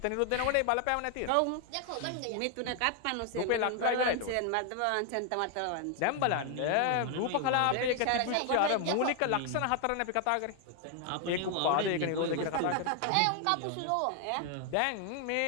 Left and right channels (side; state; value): both; different; correlation 0.00